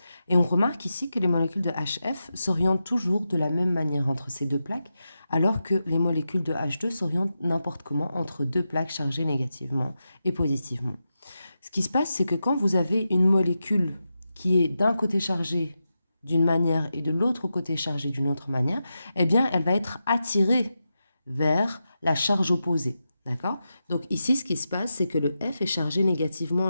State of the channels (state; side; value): inverted; both; correlation -0.89